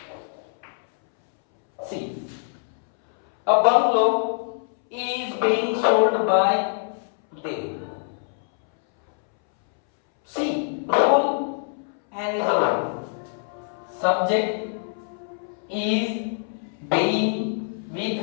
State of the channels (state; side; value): silent; right; 62 dB below the other